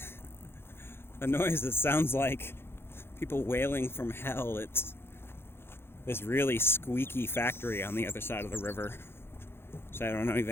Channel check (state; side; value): late; right; 0.11 ms